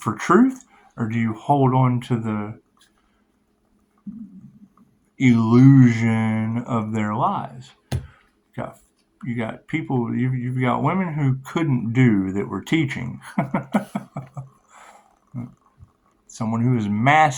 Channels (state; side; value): identical; both; correlation 1.00